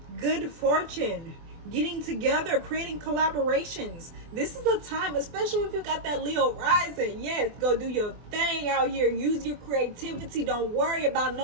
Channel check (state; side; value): late; left; 24 ms